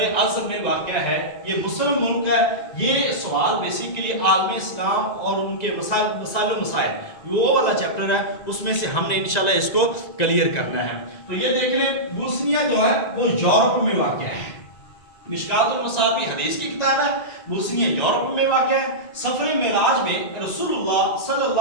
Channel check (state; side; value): late; right; 1.9 ms